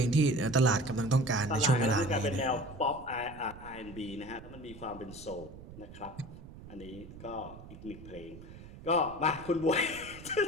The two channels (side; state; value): right; noise; rumble, 16 dB below the sound